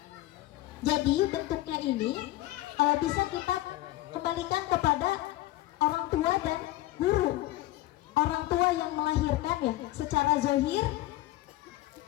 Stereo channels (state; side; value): quieter; right; 16.6 dB